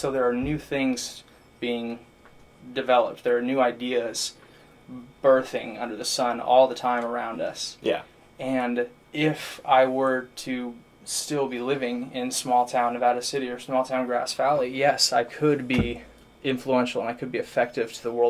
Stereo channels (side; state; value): both; identical; correlation 1.00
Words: there are new things being developed. There are new ideas birthing under the sun all the time around us. Yeah. And if I were to still be living in small town Nevada City or small town Grass Valley, yes, I could be influential and I could be effective to the